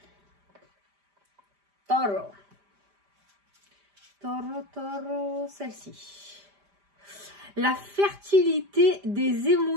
Taureau. Taureau, taureau, celle-ci. La fertilité des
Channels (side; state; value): left; late; 5.0 ms